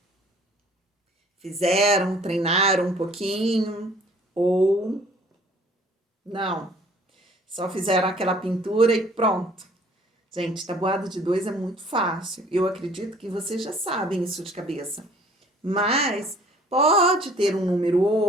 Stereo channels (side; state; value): both; normal; correlation 0.54